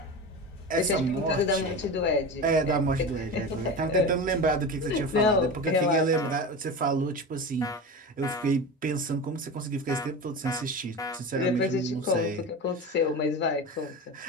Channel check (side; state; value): both; normal; correlation 0.27